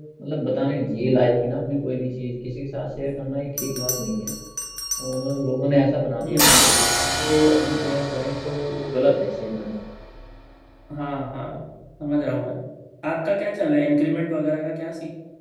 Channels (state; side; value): identical; both; correlation 1.00